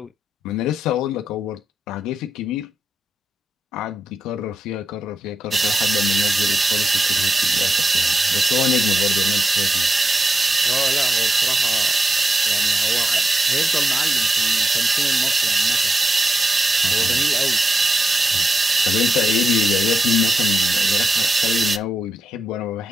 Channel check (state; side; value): normal; both; correlation 0.87